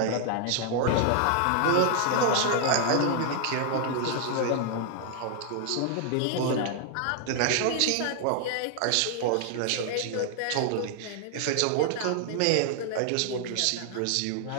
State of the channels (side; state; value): both; different; correlation 0.00